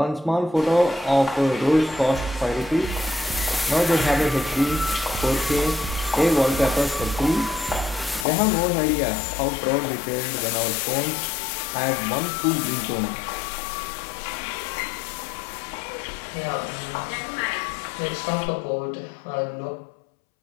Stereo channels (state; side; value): drops out; right; at 8.2 s